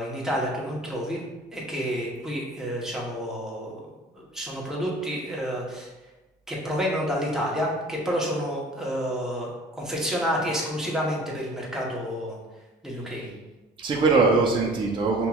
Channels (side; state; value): both; normal; correlation 0.47